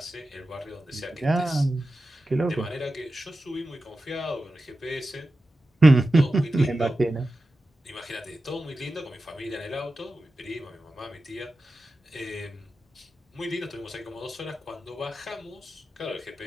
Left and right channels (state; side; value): normal; both; correlation 0.93